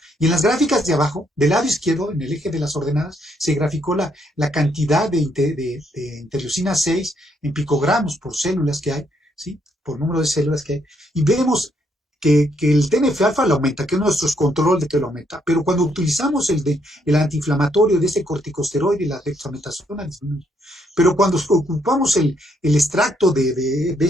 Y en las gráficas de abajo, del lado izquierdo, en el eje de las ordenadas, se graficó la cantidad de interleucina 6 en picogramos por células que hay, ¿sí? Por número de células que hay. Y vemos que el TNF-alfa lo aumenta, que es nuestro control de que lo aumenta. Pero cuando utilizamos el antiinflamatorio de este corticosteroide, la dexametasona, disminuye. Pero cuando ocupamos el extracto de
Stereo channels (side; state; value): both; normal; correlation 0.73